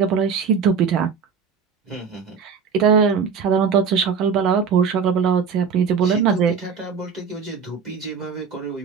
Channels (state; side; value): quieter; left; 6.1 dB